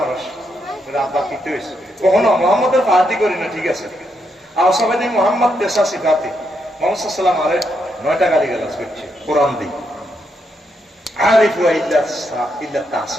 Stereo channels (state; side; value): normal; both; correlation 0.79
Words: মানুষ, আব্বা কিতে হয়েছে কখনো মোহাম্মদের পার্টি করি না, ঠিক আছে। আর সবাই মোহাম্মদ পেশা শিখাতে মোহাম্মদ সাল্লাম আরে 9টা গালি গালাজ করছে কোরআন দি। আরিফু ইল্লা